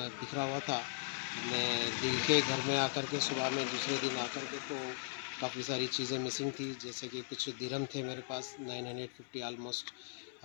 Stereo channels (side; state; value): right; silent; 52 dB below the other